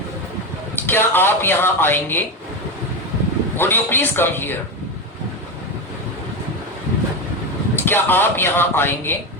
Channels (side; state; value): both; normal; correlation 0.15